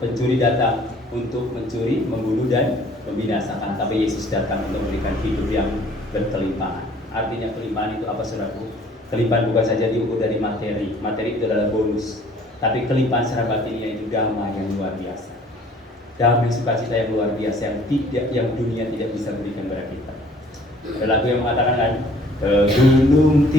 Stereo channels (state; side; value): normal; both; correlation 0.55